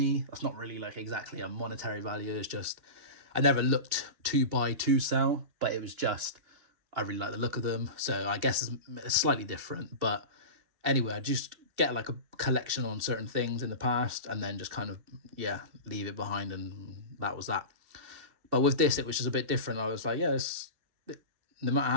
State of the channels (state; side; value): late; left; 2.7 ms